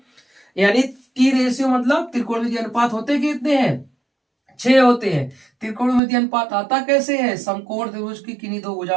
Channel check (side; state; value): left; drops out; at 6.0 s